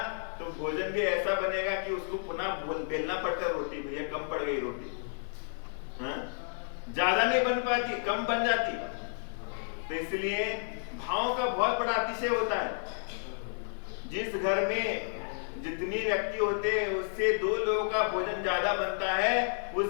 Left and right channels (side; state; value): right; silent; 57 dB below the other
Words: तो भोजन भी ऐसा बनेगा कि उसको पुनः बेलना पड़ता है रोटी, भैया कम पड़ गई रोटी। हाँ? ज्यादा नहीं बन पाती, कम बन जाती। तो इसलिए भाव का बहुत बड़ा अतिशय होता है। जिस घर में जितने व्यक्ति होते हैं उससे 2 लोगों का भोजन ज्यादा बनता है, उस